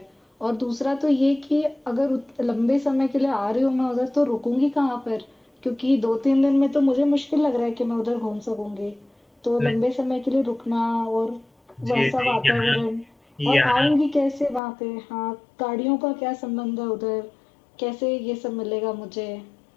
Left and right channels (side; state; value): right; drops out; at 14.6 s